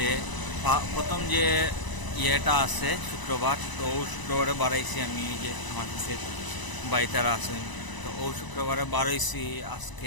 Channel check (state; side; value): late; right; 1.0 ms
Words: প্রথম যে ইয়েটা আছে শুক্রবার, তো ও শুক্রবারে বাড়াইছি আমি, যে আমার কাছে বাইতারা আছেন, তো ও শুক্রবারে বাড়াইছি।